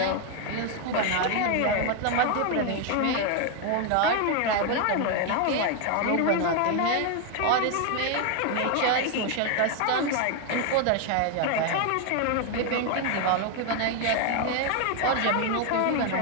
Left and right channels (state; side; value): different; both; correlation 0.01